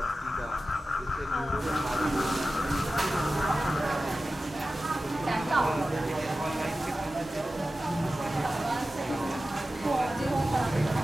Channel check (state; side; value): normal; both; correlation 0.94